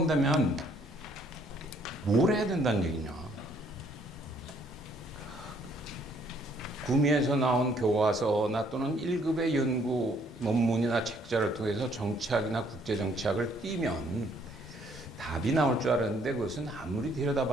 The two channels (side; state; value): both; normal; correlation 0.65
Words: 뭘 해야 된다는 얘기냐? 구미에서 나온 교과서나 또는 1급의 연구 논문이나 책자를 통해서 정치학이나 국제정치학을 띄면 답이 나올 줄 알았는데, 그것은 아무리